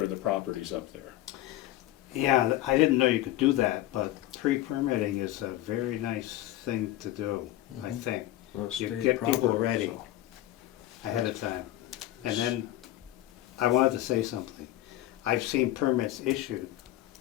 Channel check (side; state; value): right; quieter; 14.7 dB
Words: the properties up there. Yeah, I didn't know you could do that, but pre-permitting is a very nice thing to do, I think, Well, You state get people property, ready. so. ahead of time. And then, I wanted to say something. I've seen permits issued